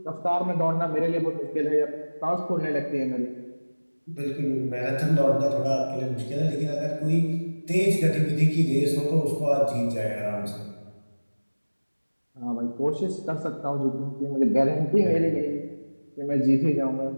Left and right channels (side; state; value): both; inverted; correlation -1.00